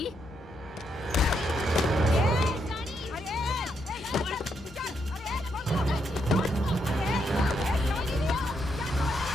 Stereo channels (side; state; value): both; normal; correlation 0.79